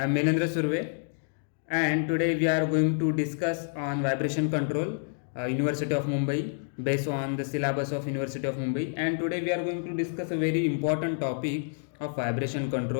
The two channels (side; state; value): right; silent; digital silence